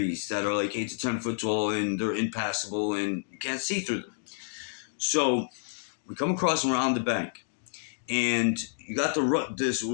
that are like 8 to 10 foot tall, and they're impassable, and you can't see through them. So we come across and we're on the bank. And you got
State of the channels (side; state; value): right; silent; digital silence